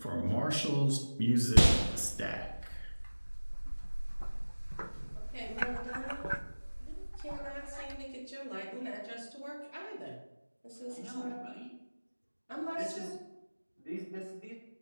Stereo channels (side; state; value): both; inverted; correlation -1.00